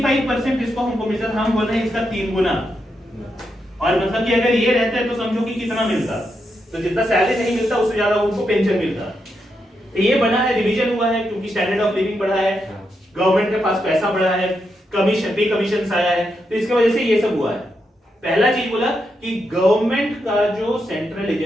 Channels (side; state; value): both; normal; correlation 0.83